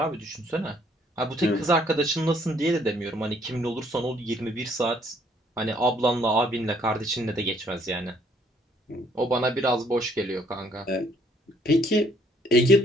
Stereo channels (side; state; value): both; normal; correlation 0.64